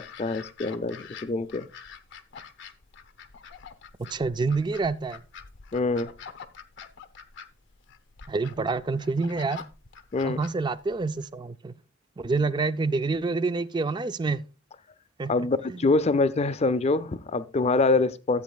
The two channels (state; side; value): normal; both; correlation 0.48